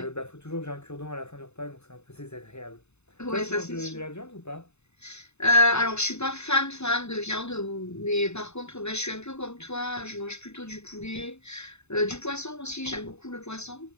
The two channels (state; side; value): late; right; 0.81 ms